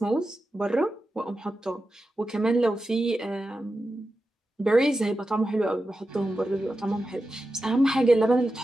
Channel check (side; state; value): both; normal; correlation 0.91